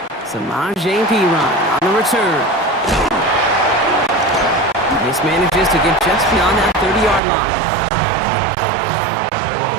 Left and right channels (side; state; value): left; drops out; at 7.2 s